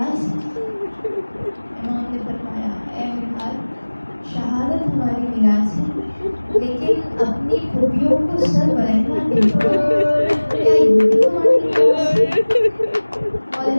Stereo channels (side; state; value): both; inverted; correlation -1.00